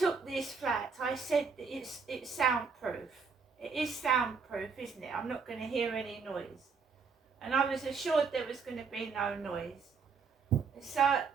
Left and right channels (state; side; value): quieter; left; 5.3 dB